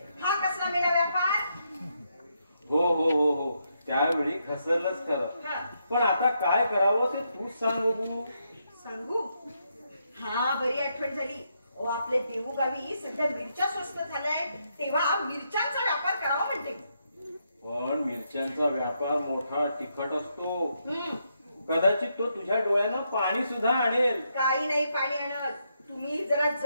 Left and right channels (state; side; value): inverted; both; correlation -0.80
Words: हा कसला मेला व्यापार? हो हो हो हो त्यावेळी घसरलंच खरं. हा. पण आता काय करावं ते तूच सांग बघू. सांगू? हा बरी आठवण झाली. ओ आपले देऊ गावी सध्या मिरच्या स्वस्त झाल्याय, तेव्हा मिरच्यांचा व्यापार करावा म्हणते. पण मिरच्यांचा व्यापार मोठा तिखट असतो. कदाचित तो तुझ्या डोळ्यानं पाणी सुद्धा आणेल. काही नाही पाणी आणत, तुम्ही जरा